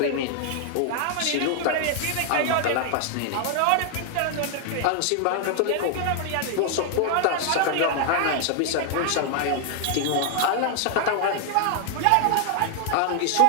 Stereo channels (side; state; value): both; different; correlation 0.00